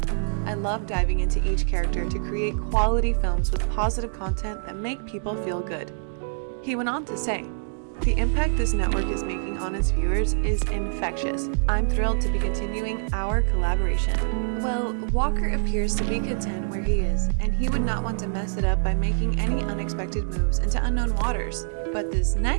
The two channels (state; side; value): silent; left; digital silence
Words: I love diving into each character to create quality films with positive content that make people feel good. He went on to say, the impact this network is making on its viewers is infectious. I'm thrilled to be continuing our collaboration. Well, Walker appears to be content where he is, and he would not want to mess it up by making any unexpected moves into unknown waters. But this